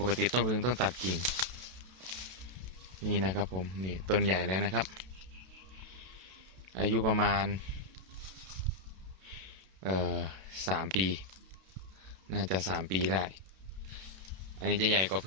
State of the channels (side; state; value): left; late; 32 ms